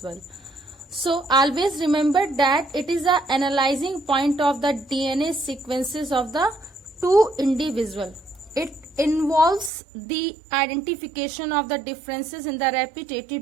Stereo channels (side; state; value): left; drops out; at 9.7 s